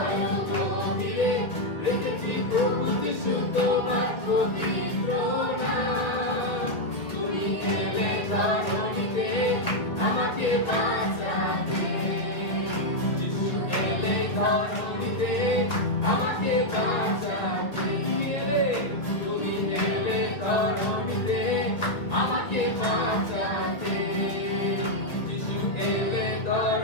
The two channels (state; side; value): late; right; 2.1 ms